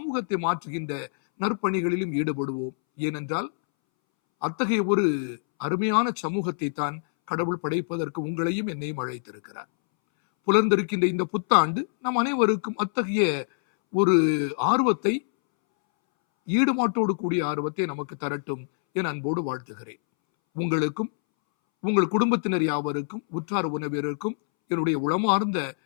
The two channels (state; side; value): silent; right; 61 dB below the other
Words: மாற்றுகின்ற நற்பணிகளிலும் ஈடுபடுவோம். ஏனென்றால் அத்தகைய ஒரு அருமையான சமூகத்தை தான் கடவுள் படைப்பதற்கு உங்களையும் என்னையும் அழைத்திருக்கிறார். புலர்ந்திருக்கின்ற இந்த புத்தாண்டு நம் அனைவருக்கும் அத்தகைய ஒரு ஆர்வத்தை, ஈடுபாட்டோடு கூடிய ஆர்வத்தை நமக்கு தரட்டும் என அன்போடு வாழ்த்துகிறேன். உங்களுக்கும் உங்கள் குடும்பத்தினர் யாவருக்கும் உற்றார் உறவினருக்கும் என்னுடைய உளமார்ந்த